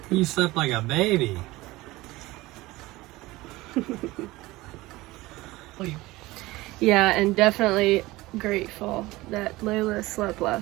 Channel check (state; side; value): quieter; left; 19.6 dB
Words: You slept like a baby. Yeah, and definitely grateful that Layla slept